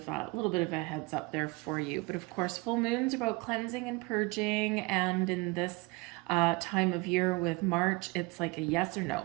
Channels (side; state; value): left; quieter; 25.6 dB